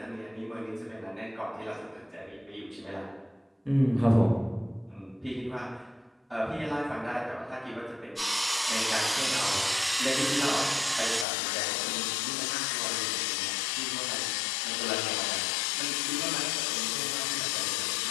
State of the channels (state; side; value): drops out; right; at 11.2 s